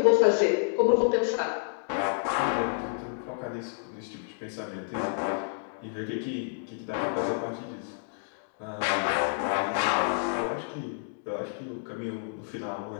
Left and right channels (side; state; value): right; silent; digital silence